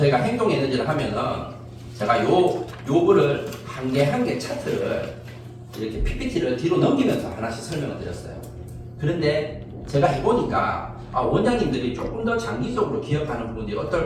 행동 에너지를 하면은 제가 요거를 한 개 한 개 차트를 이렇게 PPT를 뒤로 넘기면서 하나씩 설명을 드렸어요. 그런데 제가 해보니까 원장님들이 조금 더 장기적으로 기억하는 부분들이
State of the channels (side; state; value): both; identical; correlation 1.00